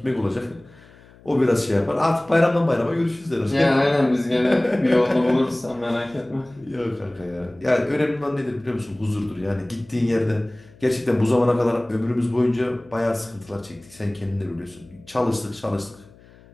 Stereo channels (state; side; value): noise; left; hum, 25 dB below the sound